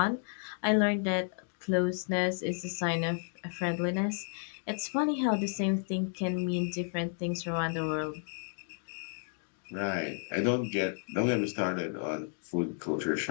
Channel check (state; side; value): silent; right; 56 dB below the other